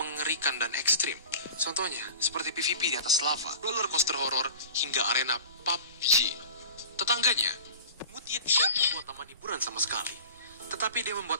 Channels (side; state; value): both; inverted; correlation -0.39